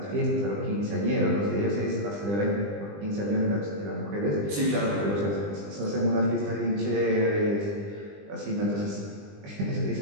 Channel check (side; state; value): left; late; 20 ms